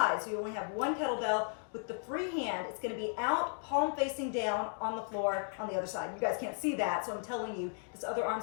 so you only have one kettlebell. With the free hand, it's going to be out, palm facing down on the floor on the other side. You guys can't see that, so I'm telling you, this other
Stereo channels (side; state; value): right; silent; 54 dB below the other